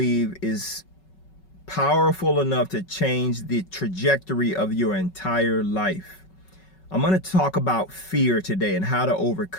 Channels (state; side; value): late; right; 5.3 ms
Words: is powerful enough to change the trajectory of your entire life. I'm going to talk about fear today and how to